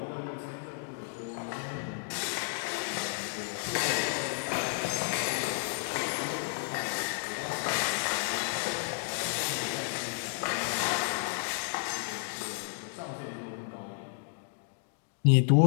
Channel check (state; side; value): silent; right; digital silence